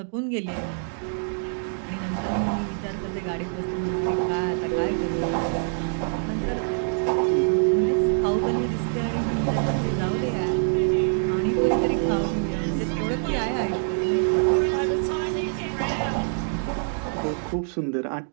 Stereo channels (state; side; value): silent; left; 62 dB below the other